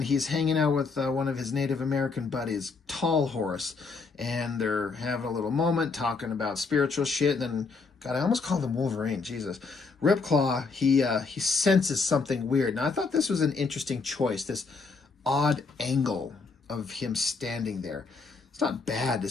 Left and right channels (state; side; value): quieter; right; 4.5 dB